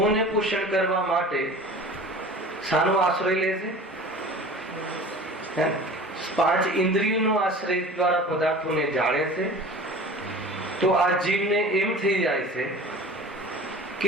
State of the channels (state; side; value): normal; both; correlation 0.40